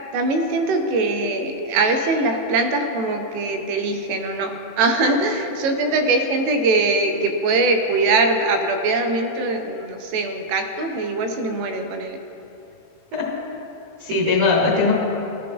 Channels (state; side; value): late; left; 18 ms